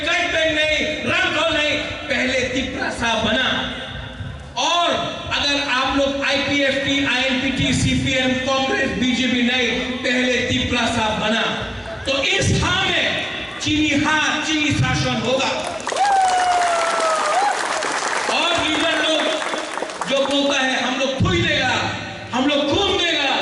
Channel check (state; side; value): identical; both; correlation 1.00